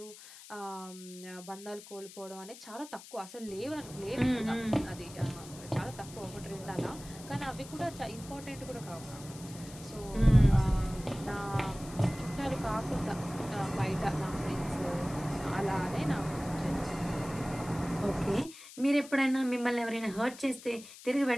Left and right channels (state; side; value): noise; left; hiss, 17 dB below the sound